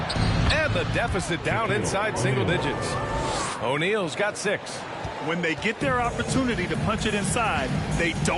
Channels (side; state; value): both; identical; correlation 1.00